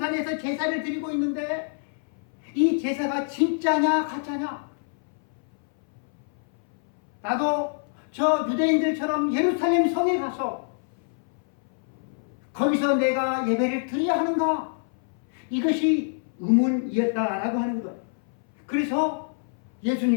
제사를 드리고 있는데 이 제사가 진짜냐 가짜냐? 나도 저 유대인들처럼 예루살렘 성에 가서 거기서 내가 예배를 드려야 하는가? 이것이 의문이었다라고 하는 거예요. 그래서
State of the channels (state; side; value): silent; right; 59 dB below the other